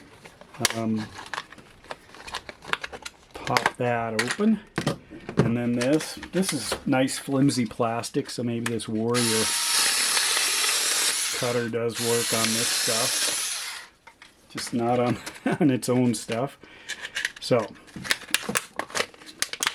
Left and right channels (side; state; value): both; identical; correlation 1.00